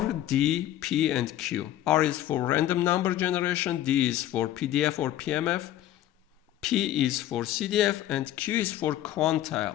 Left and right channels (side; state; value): right; quieter; 12.9 dB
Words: D, P, and Q. R is for random number generation, D is for PDF or PMF, P is for CDF, and Q is for